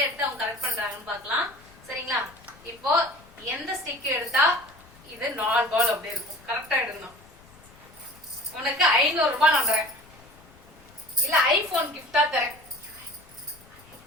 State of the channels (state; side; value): noise; left; rumble, 25 dB below the sound